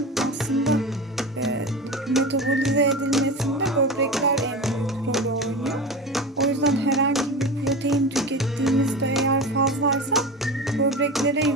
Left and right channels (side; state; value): both; normal; correlation 0.27